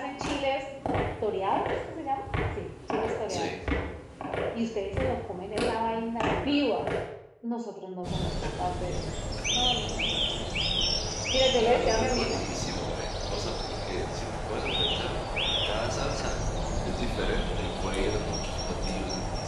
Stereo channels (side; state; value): both; identical; correlation 1.00